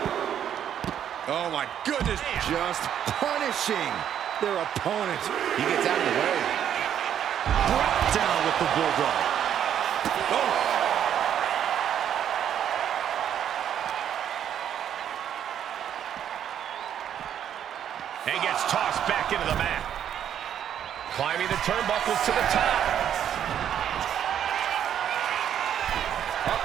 Oh, my goodness. Just punishing their opponent. He gets out of the way. Brought down with the bulldog. Oh. And gets tossed back into the mat. Climbing the turnbuckles to the top.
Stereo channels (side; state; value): left; quieter; 9.6 dB